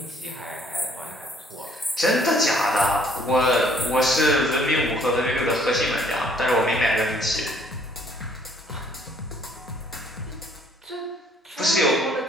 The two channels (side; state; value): both; normal; correlation 0.62